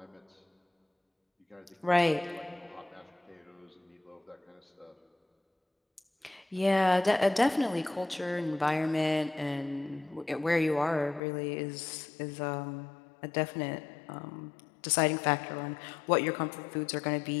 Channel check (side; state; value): right; drops out; at 11.2 s